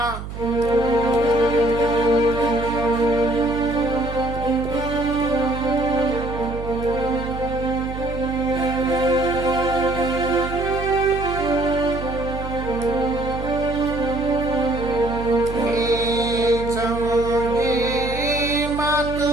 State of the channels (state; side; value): noise; right; hum, 9 dB below the sound